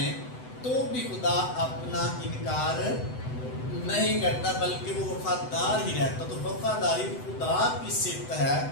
تو بھی خدا اپنا انکار نہیں کرتا، بلکہ وہ وفادار ہی رہتا. تو وفاداری خدا کی صفت ہے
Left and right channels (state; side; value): late; right; 7.9 ms